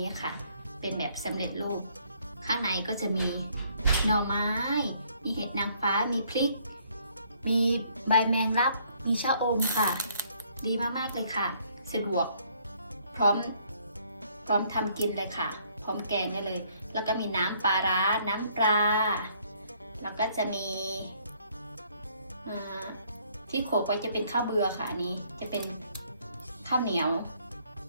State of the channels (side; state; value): both; inverted; correlation -0.65